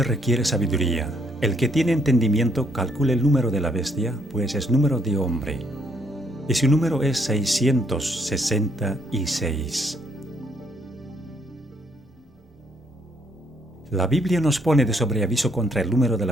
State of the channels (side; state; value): both; normal; correlation 0.70